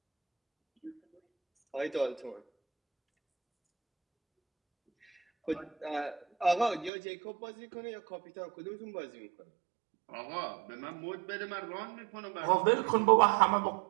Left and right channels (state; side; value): drops out; left; at 6.9 s